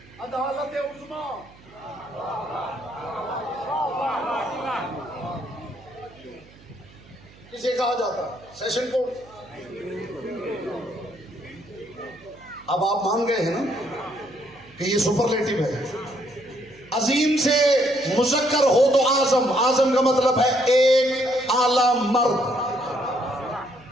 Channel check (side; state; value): right; noise; hum, 25 dB below the sound